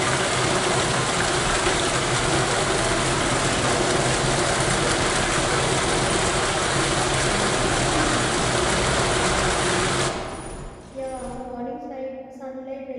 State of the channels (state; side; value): identical; both; correlation 1.00